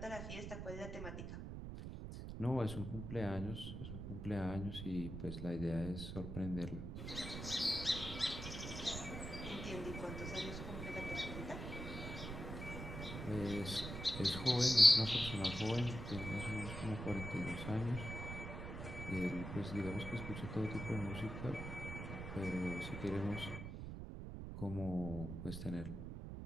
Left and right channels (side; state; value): right; noise; rumble, 7 dB below the sound